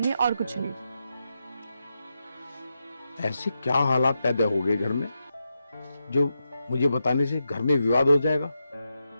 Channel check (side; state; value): both; inverted; correlation -0.87